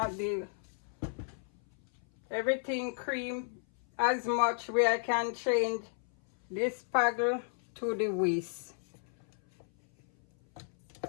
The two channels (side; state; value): right; silent; 55 dB below the other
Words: everything cream as much where I can change this paddle to the whisk.